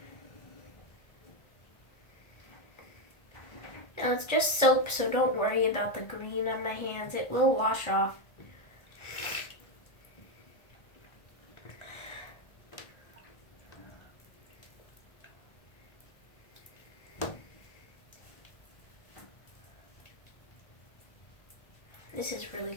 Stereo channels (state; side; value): late; right; 1.3 ms